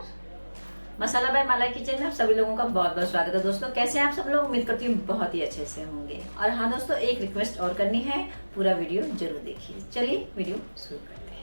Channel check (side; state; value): both; inverted; correlation -1.00